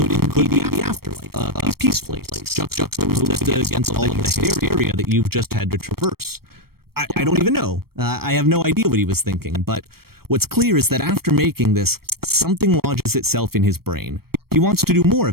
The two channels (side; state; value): left; late; 0.94 ms